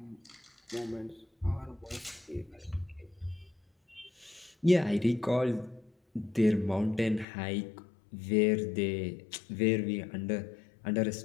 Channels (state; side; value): drops out; right; at 7.2 s